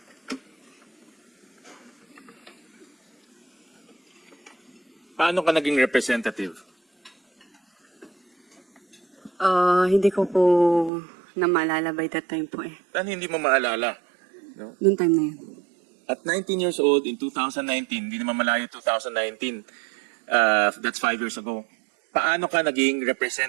Paano ka naging representative? Hindi ko po na maalala by that time po eh. Paano hindi mo maalala? No? Noong time na yun. At 19 years old in 2019, hindi naman malayo 2019, that's 5 years ago. Paano ka naging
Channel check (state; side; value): drops out; left; at 10.9 s